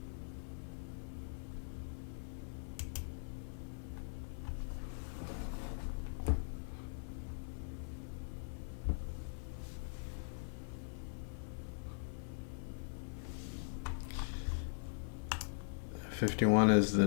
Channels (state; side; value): silent; right; 50 dB below the other